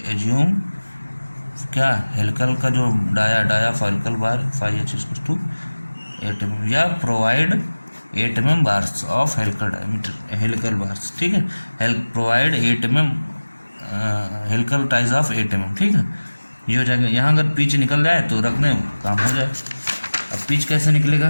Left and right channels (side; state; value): both; inverted; correlation -1.00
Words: एज्यूम क्या, हेलिकल का जो dia of helical bar 5h to 8 mm, या provide 8 mm bars of helical diameter, helical bars, ठीक है। Provide 8 mm helical ties of 8 mm, ठीक है। ये हो जाएगा। यहाँ अगर पिच निकल जाए तो रखने काम हो जाए। अब पिच कैसे